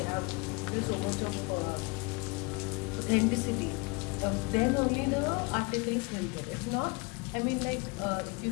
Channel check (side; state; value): right; quieter; 28.9 dB